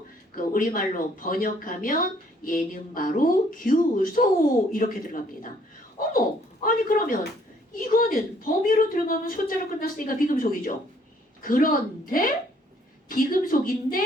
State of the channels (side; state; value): both; normal; correlation 0.63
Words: 그 우리말로 번역하면 얘는 바로 규소 이렇게 들어갑니다. 어머, 아니 그러면 이거는 범위로 들어가면 소자로 끝났으니까 비금속이죠. 그런데